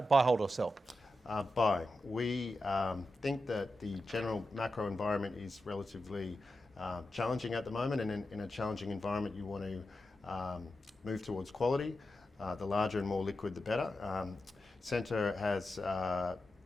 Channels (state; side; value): normal; both; correlation 0.90